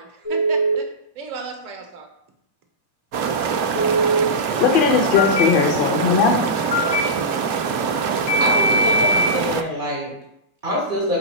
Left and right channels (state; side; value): late; left; 2.8 ms